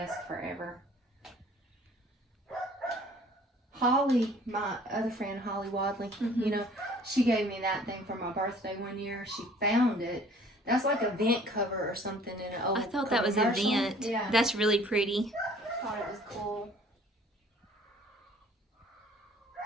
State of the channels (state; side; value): normal; both; correlation 0.53